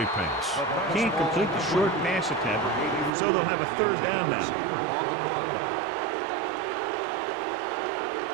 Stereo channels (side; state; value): left; drops out; at 3.1 s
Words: pass. Can't complete the short pass attempt, so they'll have a 3rd down now. On the